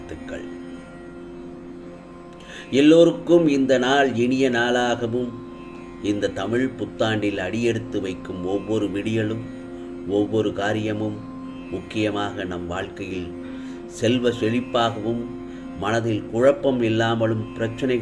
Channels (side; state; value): both; identical; correlation 1.00